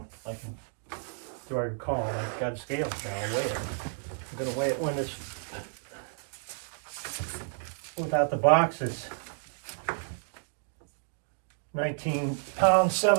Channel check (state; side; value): silent; left; 57 dB below the other